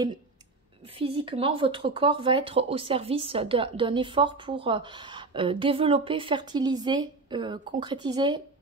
physiquement, votre corps va être au service d'un effort pour développer, fertiliser, concrétiser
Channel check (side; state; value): left; quieter; 3.6 dB